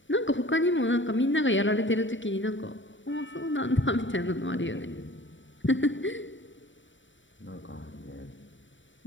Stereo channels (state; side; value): late; right; 0.55 ms